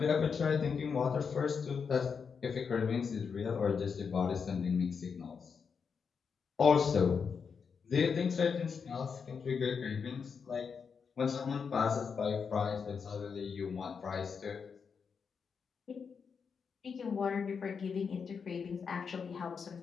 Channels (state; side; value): quieter; right; 6.0 dB